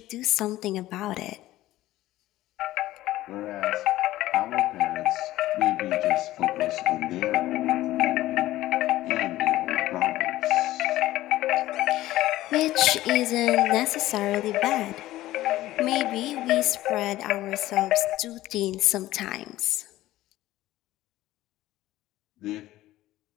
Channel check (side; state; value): right; quieter; 15.8 dB